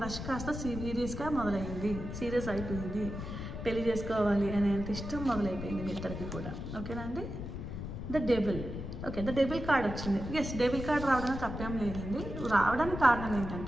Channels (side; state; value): left; noise; rumble, 7 dB below the sound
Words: కాస్త సీరియస్ అయిపోయింది, పెళ్లి చేసుకోవాలి అనేంత ఇష్టం మొదలైపోయింది మీ ఇద్దరికి కూడా. ఓకేనా అండి? The devil. Okay, the devil card వచ్చింది. ఎస్, డెవిల్ కార్డ్ రావడానికి తప్పేం లేదండి. రావడానికి కారణం